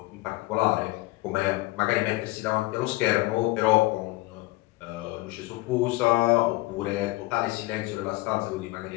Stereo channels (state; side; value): quieter; right; 20.5 dB